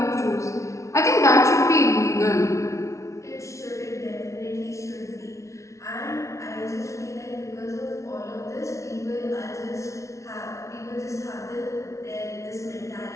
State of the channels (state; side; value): late; right; 0.14 ms